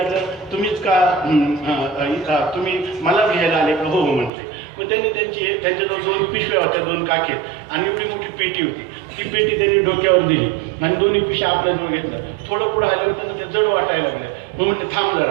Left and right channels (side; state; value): left; drops out; at 4.3 s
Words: तुम्हीच का तुम्ही मला घ्यायला आले का? हो म्हटले. मग त्यांनी त्यांच्याजवळ 2 पिशव्या होत्या, 2 काखेत, आणि एवढी मोठी पेटी होती. ती पेटी त्यांनी डोक्यावर दिली आणि 2 पिशव्या आपल्याजवळ घेतल्या. थोडं पुढं आलं होतं ते जड वाटायला लागलं. मग म्हटलं थांब